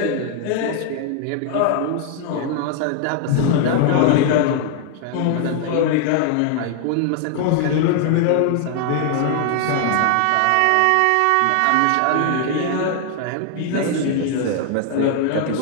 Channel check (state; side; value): different; both; correlation 0.00